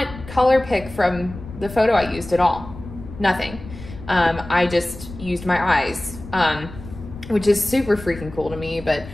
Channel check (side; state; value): left; noise; rumble, 14 dB below the sound